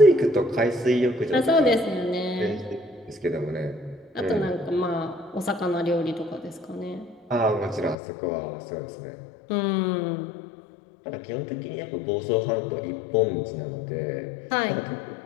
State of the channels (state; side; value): drops out; right; at 8.0 s